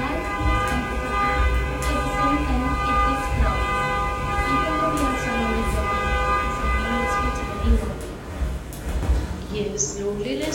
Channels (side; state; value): both; identical; correlation 1.00